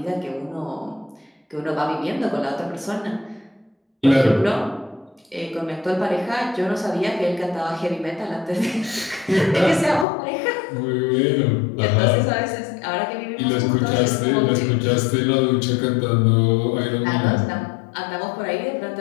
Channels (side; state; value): right; drops out; at 10.1 s